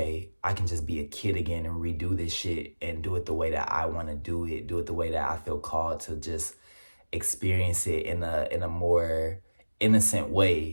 I can just be a kid again and redo this shit and do it the way that I want to do it the way that I feel called to just experience it in a more innocent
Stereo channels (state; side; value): inverted; both; correlation -1.00